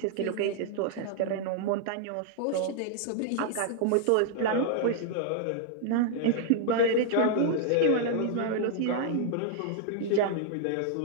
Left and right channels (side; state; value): both; different; correlation -0.01